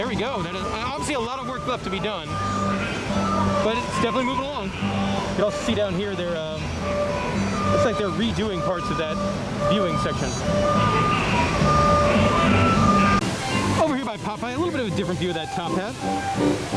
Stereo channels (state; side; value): identical; both; correlation 1.00